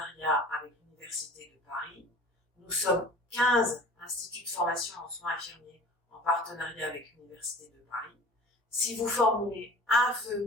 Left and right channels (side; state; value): both; normal; correlation 0.44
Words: avec l'Université de Paris. Nous sommes 15 instituts de formation en soins infirmiers en partenariat avec l'Université de Paris. Si vous formulez un